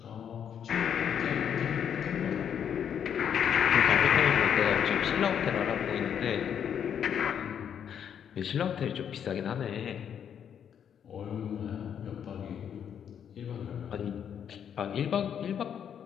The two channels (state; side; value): quieter; right; 8.5 dB